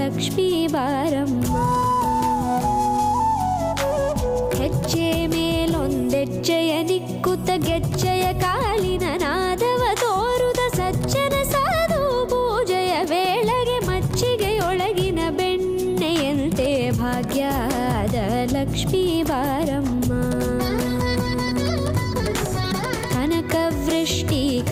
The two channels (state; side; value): identical; both; correlation 1.00